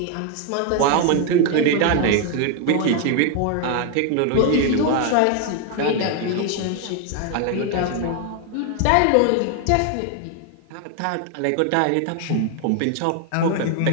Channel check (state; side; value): different; both; correlation 0.01